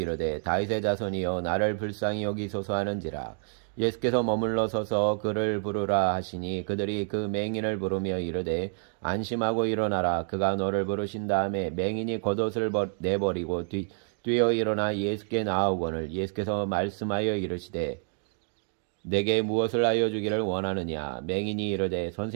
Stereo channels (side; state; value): left; silent; digital silence